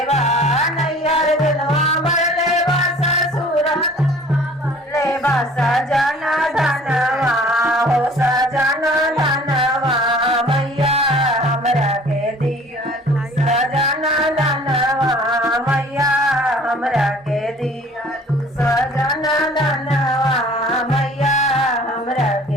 बा नैयर धनवा बढ़ले बा ससुर धनवा बढ़ले बा सजन धनवा हो सजन धनवा मैया हमरा के दियालू सजन धनवा मैया हमरा के दियालू सजन धनवा मैया हमरा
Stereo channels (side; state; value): both; normal; correlation 0.50